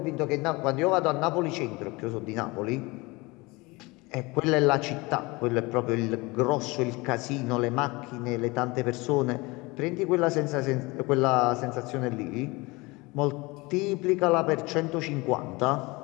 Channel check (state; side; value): quieter; right; 24.0 dB